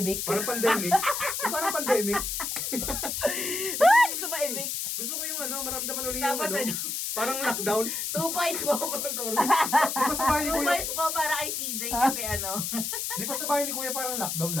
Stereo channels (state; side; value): noise; left; hiss, 2 dB below the sound